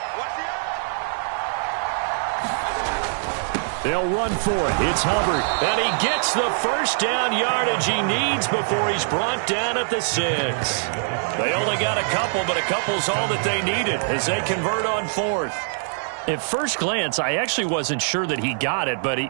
They'll run for it. It's Hubbard. And he gets the first down yardage he needs before he's brought down at the 6. They only got a couple, but a couple's all that they needed as they convert on 4th. At first glance, I actually wasn't sure that he got it, but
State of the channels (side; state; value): left; silent; 63 dB below the other